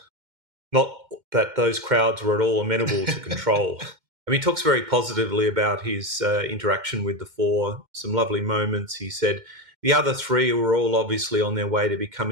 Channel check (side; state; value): left; late; 2.1 ms